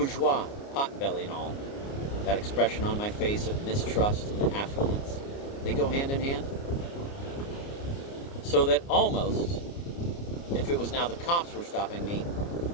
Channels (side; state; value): right; late; 29 ms